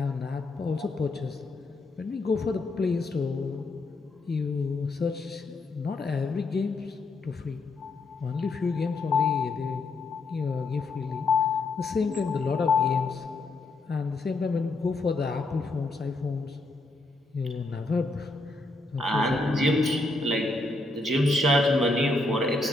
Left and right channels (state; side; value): quieter; right; 3.1 dB